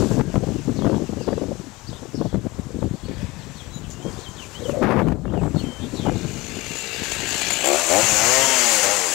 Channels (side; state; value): right; quieter; 21.7 dB